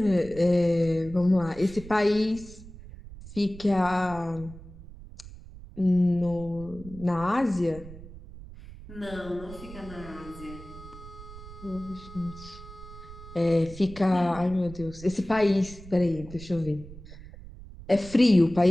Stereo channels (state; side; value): noise; right; rumble, 16 dB below the sound